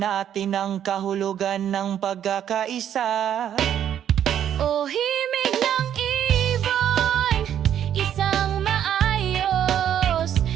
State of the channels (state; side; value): quieter; left; 10.0 dB